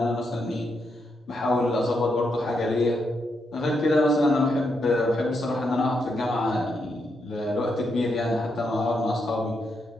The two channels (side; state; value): both; normal; correlation 0.81